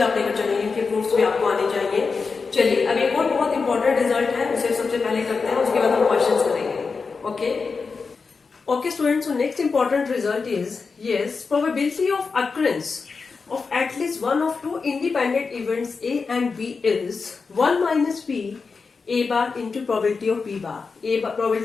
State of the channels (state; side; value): quieter; right; 4.8 dB